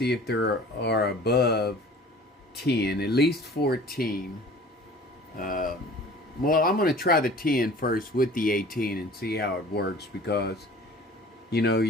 if there are above 10, at least 14. Well, I'm going to try the 10 first with the 18 and see how it works, because, you know,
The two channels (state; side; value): normal; both; correlation 0.46